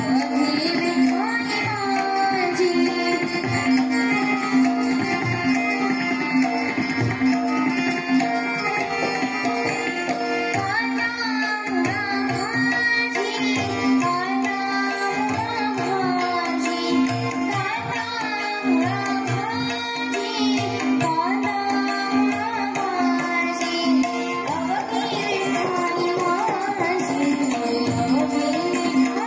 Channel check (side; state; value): both; identical; correlation 1.00